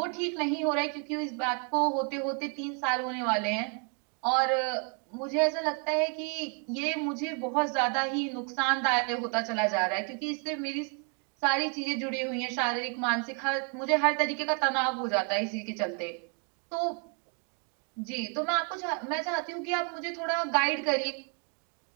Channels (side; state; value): left; quieter; 38.3 dB